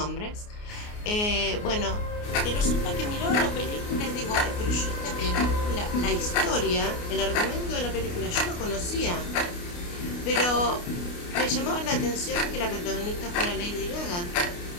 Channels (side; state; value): right; late; 29 ms